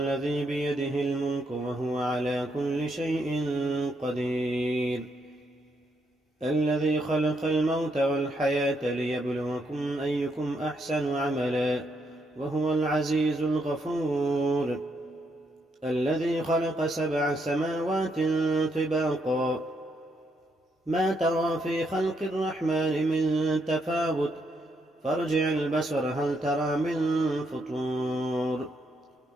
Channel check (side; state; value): both; normal; correlation 0.77